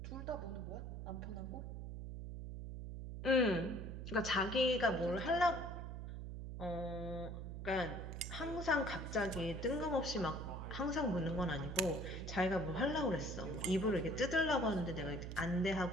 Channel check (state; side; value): noise; right; hum, 7 dB below the sound